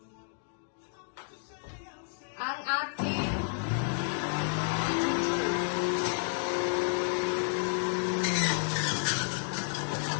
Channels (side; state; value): right; silent; digital silence